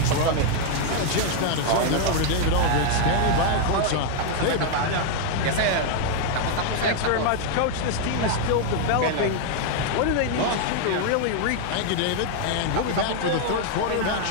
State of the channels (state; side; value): different; both; correlation 0.00